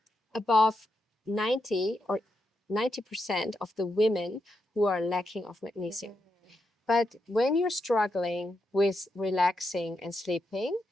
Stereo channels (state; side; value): normal; both; correlation 0.84